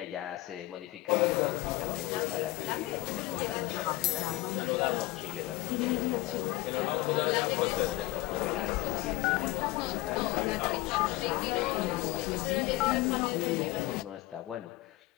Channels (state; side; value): quieter; right; 19.1 dB